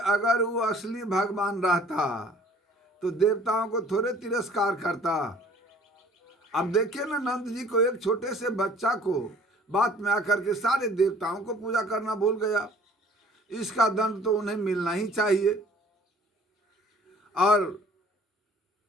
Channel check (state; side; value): normal; both; correlation 0.52